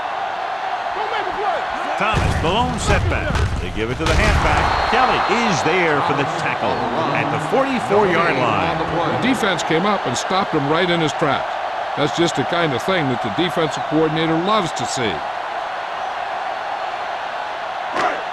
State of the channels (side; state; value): both; identical; correlation 1.00